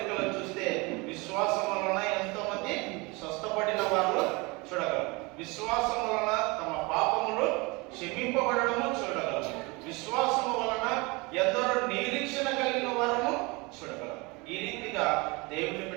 చూస్తే విశ్వాసం వలన ఎంతో మంది స్వస్థపడిన వారు చూడగలరు. విశ్వాసం వలన తమ పాపములు క్షమింపబడము చూడగలరు. విశ్వాసము వలన ఎందరో నిరీక్షణ కలిగిన వారము చూడగలరు. ఈ రీతిగా దేవుని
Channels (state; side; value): quieter; left; 26.2 dB